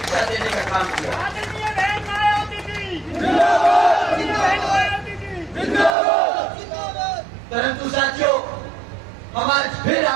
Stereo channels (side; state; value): left; drops out; at 5.9 s